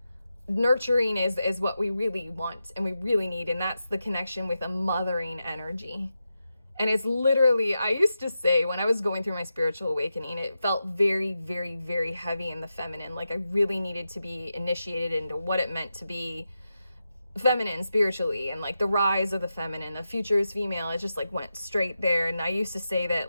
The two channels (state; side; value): inverted; both; correlation -0.89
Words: Nurturing is what we really want and we really need, and that's the connection with a mothering energy. And it's literally, I used to say when I was going through my spiritual awakening, it felt very, very, very heavy in the feminine. Like I really needed to be initiated into what it meant to be feminine spiritually, and like the rise of the feminine, the future is female. It just like went straight there. And I used to say that